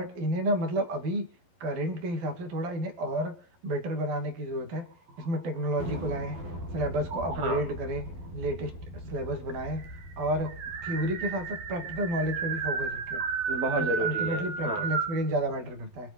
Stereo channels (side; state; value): left; late; 12 ms